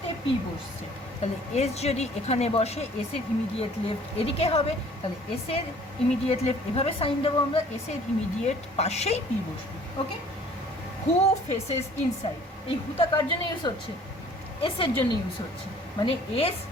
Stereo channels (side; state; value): both; normal; correlation 0.53